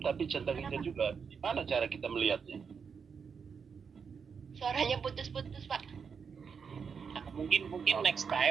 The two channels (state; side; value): quieter; left; 6.2 dB